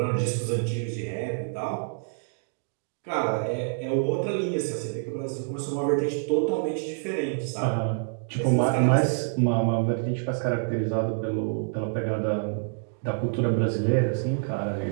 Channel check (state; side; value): silent; left; digital silence